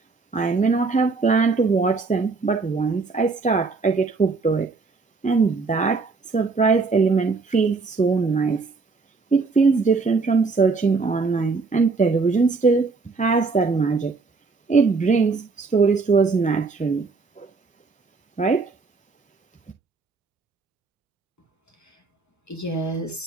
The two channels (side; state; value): left; quieter; 4.3 dB